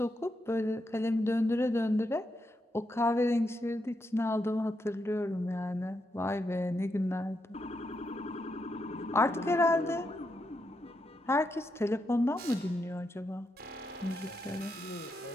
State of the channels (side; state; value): both; normal; correlation 0.83